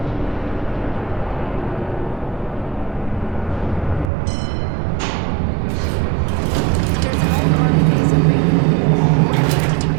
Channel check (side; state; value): left; drops out; at 4.1 s